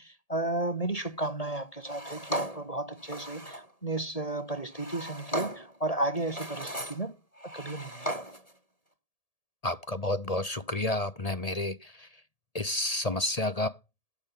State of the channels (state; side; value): late; right; 1.8 ms